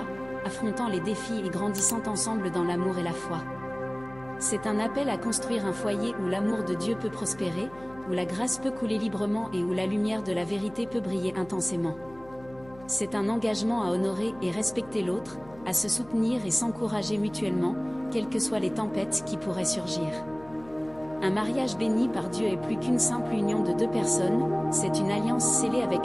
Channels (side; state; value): left; noise; hum, 22 dB below the sound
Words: affrontant les défis et grandissant ensemble dans l'amour et la foi. C'est un appel à construire un foyer où l'amour de Dieu peut prospérer, où la grâce peut couler librement et où la lumière de la vérité peut briller intensément. C'est un engagement à honorer et respecter l'autre, à se soutenir et s'encourager mutuellement, quelles que soient les tempêtes qui pourraient surgir. Un mariage béni par Dieu est plus qu'une simple union de deux personnes, c'est une alliance scellée